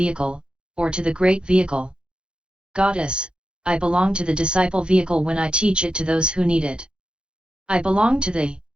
or to the great vehicle? Goddess, I belong to the disciple vehicle when I teach it to those who need it. I belong to the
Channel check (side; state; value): left; late; 0.052 ms